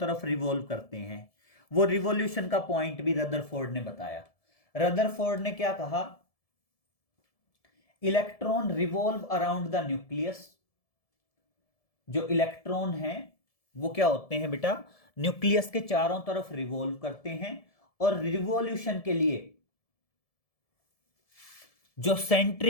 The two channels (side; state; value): right; late; 1.7 ms